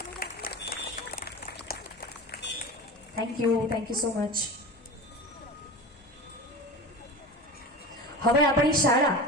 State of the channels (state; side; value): normal; both; correlation 0.30